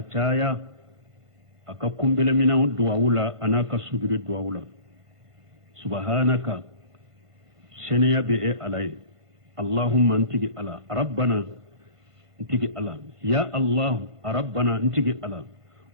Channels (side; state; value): left; late; 1.5 ms